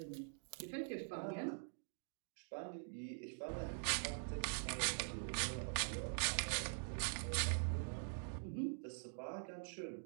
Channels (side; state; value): left; silent; digital silence